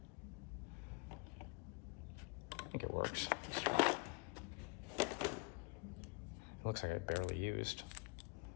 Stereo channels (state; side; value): quieter; right; 28.5 dB